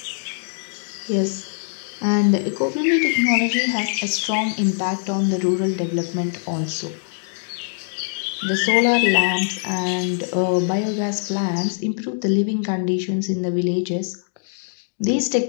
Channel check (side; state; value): right; silent; digital silence